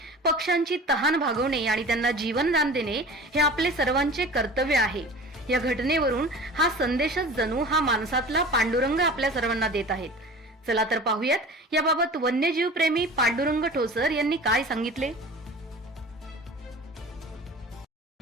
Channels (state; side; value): normal; both; correlation 0.38